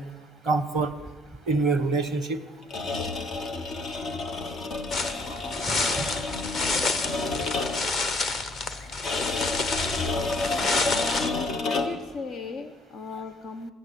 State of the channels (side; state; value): both; normal; correlation 0.61